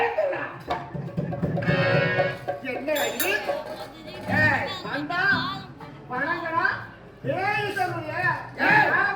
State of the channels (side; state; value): both; identical; correlation 1.00